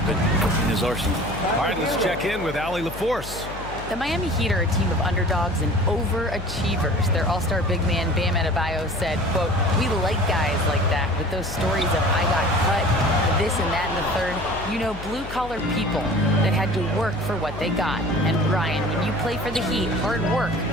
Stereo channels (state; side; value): noise; left; hum, 12 dB below the sound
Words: in his arsenal. All right, let's check in with Allie LaForce. The Miami Heat are a team of underdogs and overachievers. Their all-star big man, Bam Adebayo, said, quote, "We like guys like that with those stories of I got cut, this and that and the third. You know, blue-collar people that had to work for what they got. And Ryan, when you play for the Heat, hard work